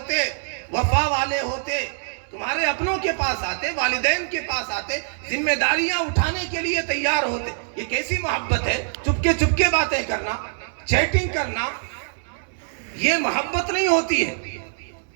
وفا والے ہوتے، تمہارے اپنوں کے پاس آتے، والدین کے پاس آتے، ذمہ داریاں اٹھانے کے لیے تیار ہوتے۔ یہ کیسی محبت ہے؟ چپکے باتیں کرنا، چیٹنگ کرنا، یہ محبت نہیں ہوتی ہے۔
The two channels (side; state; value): left; silent; 63 dB below the other